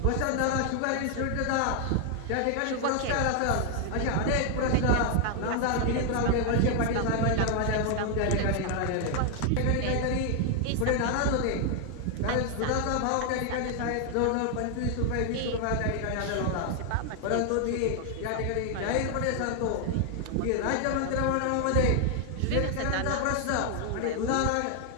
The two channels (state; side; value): different; both; correlation 0.00